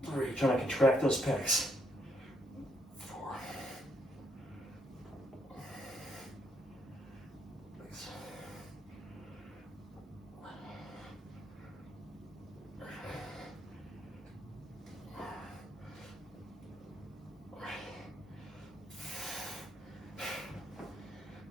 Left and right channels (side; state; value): both; normal; correlation 0.73